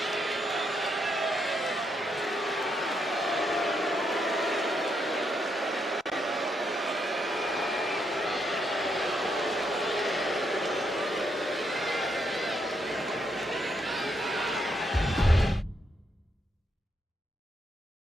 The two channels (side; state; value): both; normal; correlation 0.78